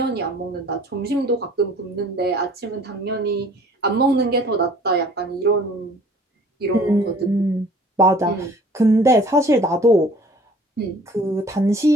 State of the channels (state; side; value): normal; both; correlation 0.52